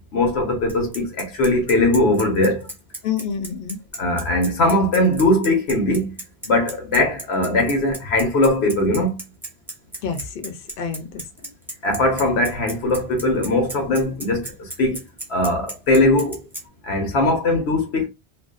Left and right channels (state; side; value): normal; both; correlation 0.02